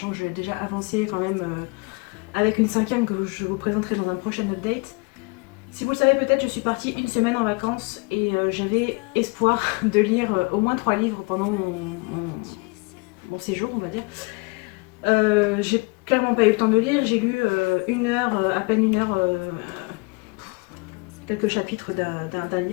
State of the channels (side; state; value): right; quieter; 30.1 dB